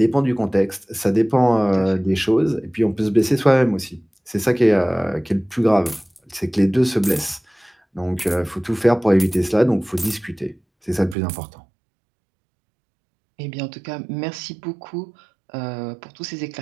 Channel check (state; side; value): drops out; left; at 11.2 s